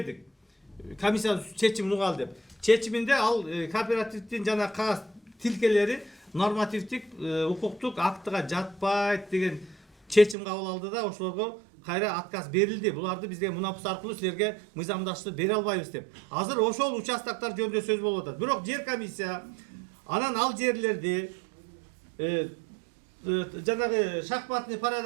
Комиссия чечимин угал деп. Чечиминде ал кооперативдин жана кагаз тилкелери нормативдик, укуктук актыга жатпайт деген чечим кабыл алды да, ошолорго кайра отказ берилди. Буларды бизге мунапыс аркылуу силерге мыйзамдаштырып бере албайбыз деп. Азыр ошол участоктор жөнүндө сөз болуп атат. Бирок жер комиссия анан ал жерлерди жанагы шахматный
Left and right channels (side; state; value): left; drops out; at 10.4 s